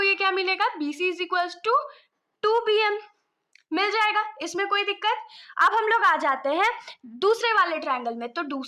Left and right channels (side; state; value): both; identical; correlation 1.00